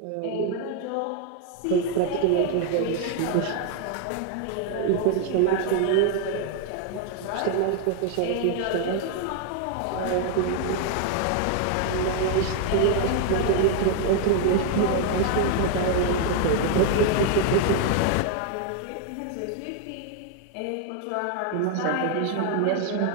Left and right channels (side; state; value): both; different; correlation 0.00